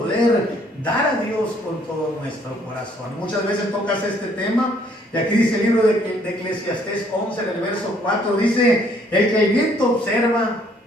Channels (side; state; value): both; normal; correlation 0.64